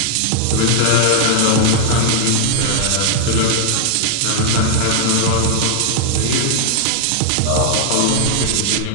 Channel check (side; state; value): both; different; correlation 0.00